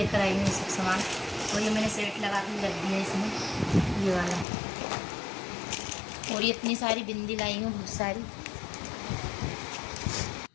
आई हूँ ये सब सामान। और ये मैंने सेट लगा के रख दिया इसमें, ये वाला। और ये इतनी सारी बिंदी लाई हूँ, बहुत सारी।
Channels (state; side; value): drops out; right; at 4.5 s